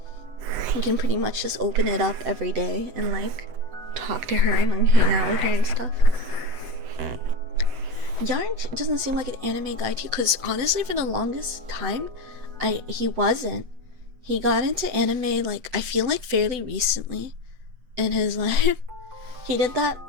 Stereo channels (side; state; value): left; late; 7.9 ms